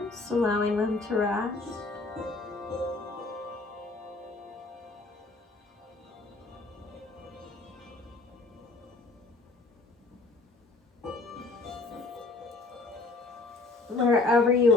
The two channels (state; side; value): quieter; right; 3.4 dB